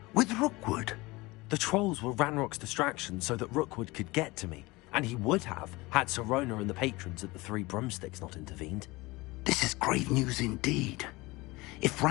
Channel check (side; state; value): right; quieter; 22.3 dB